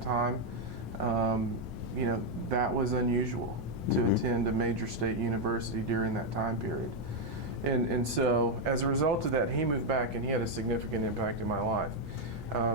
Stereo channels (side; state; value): both; normal; correlation 0.01